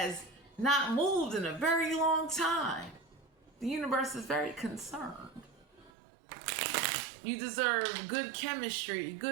not moved in a very long time. The universe is very concerned. You deserve good chemistry,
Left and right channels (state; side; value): drops out; left; at 5.9 s